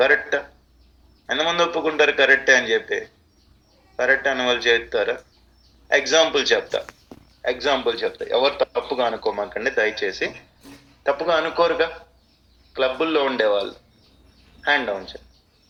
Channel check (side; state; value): both; identical; correlation 1.00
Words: ఎంతమంది ఒప్పుకుంటారు కరెక్టే అని జెప్పి? కరెక్ట్ అన్నవాళ్ళు చేత్తారా? ఎగ్జాంపుల్ చెప్తా. ఎవరు తప్పుగా అనుకోమాకండి దయచేసి. తప్పుగా అనుకోరుగా? క్లబ్బుల్లో ఉండేవాళ్ళు. హ్యాండ్ డౌన్ చేయండి.